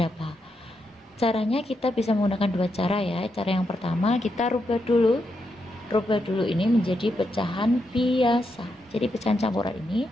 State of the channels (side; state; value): both; normal; correlation 0.83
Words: Caranya kita bisa menggunakan dua cara ya. Cara yang pertama, kita rubah dulu ini menjadi pecahan biasa. Jadi pecahan campuran ini